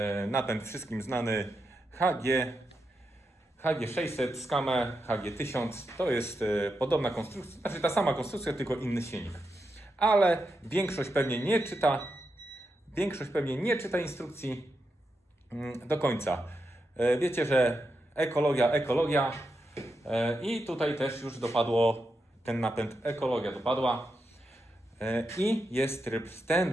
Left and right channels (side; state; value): both; normal; correlation 0.86